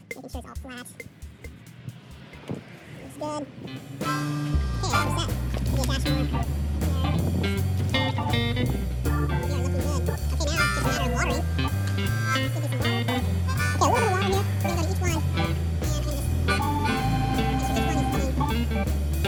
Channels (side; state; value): both; identical; correlation 1.00